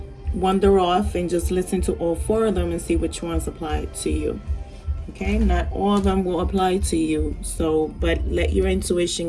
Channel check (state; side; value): identical; both; correlation 1.00